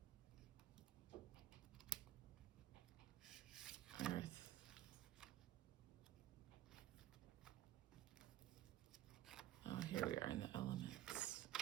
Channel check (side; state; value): left; quieter; 13.2 dB